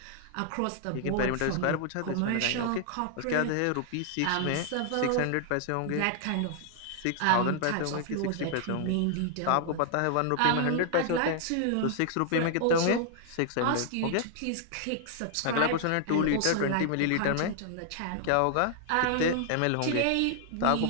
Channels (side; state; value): both; different; correlation 0.00